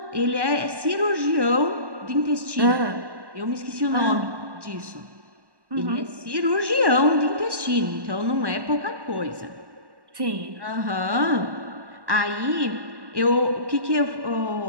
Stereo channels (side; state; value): left; late; 1.1 ms